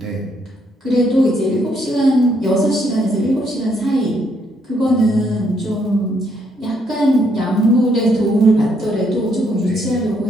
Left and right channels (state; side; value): normal; both; correlation 0.72